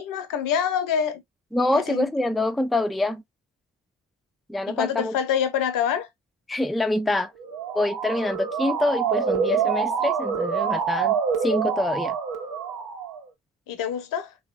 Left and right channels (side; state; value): both; normal; correlation 0.47